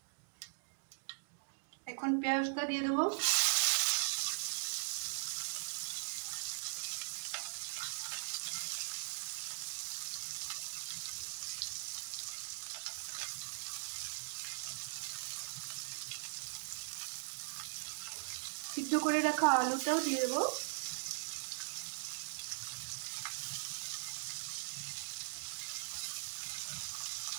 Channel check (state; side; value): silent; left; digital silence